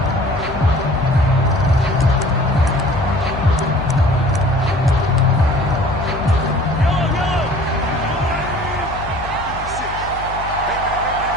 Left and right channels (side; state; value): left; noise; hum, 12 dB below the sound